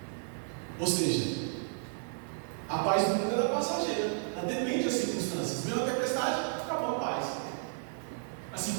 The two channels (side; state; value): left; silent; digital silence